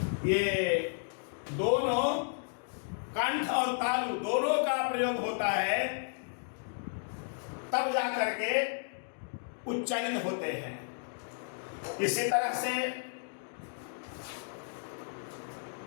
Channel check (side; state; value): right; silent; digital silence